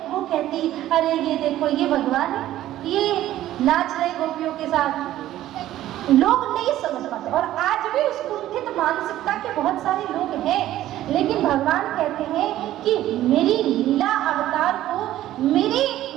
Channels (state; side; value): quieter; left; 13.7 dB